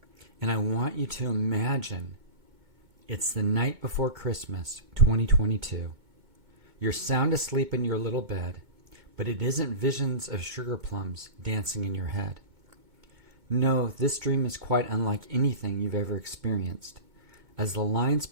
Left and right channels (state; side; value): late; left; 2.2 ms